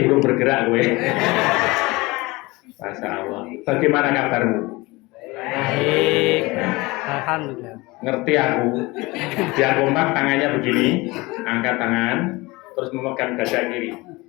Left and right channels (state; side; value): quieter; right; 22.7 dB